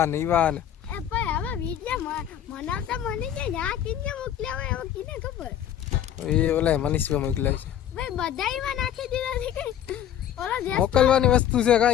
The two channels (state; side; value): quieter; right; 10.3 dB